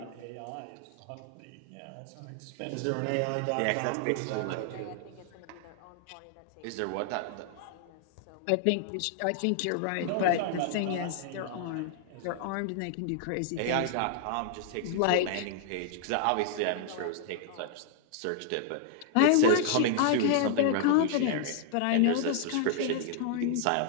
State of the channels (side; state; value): both; different; correlation 0.00